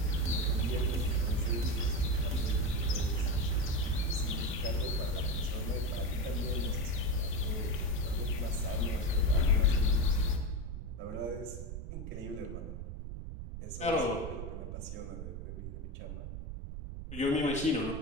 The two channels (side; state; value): right; noise; rumble, 7 dB below the sound